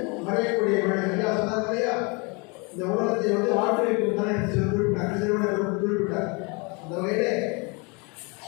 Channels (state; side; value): quieter; right; 30.6 dB